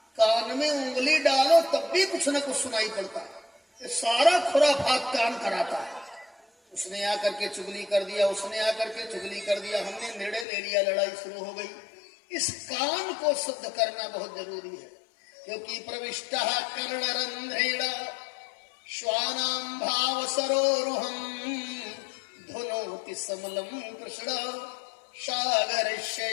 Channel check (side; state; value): right; drops out; at 10.5 s